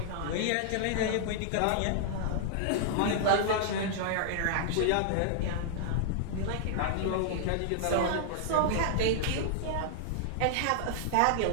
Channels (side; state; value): both; different; correlation -0.01